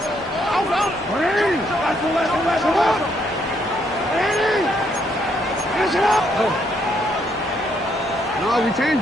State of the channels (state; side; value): noise; left; hum, 28 dB below the sound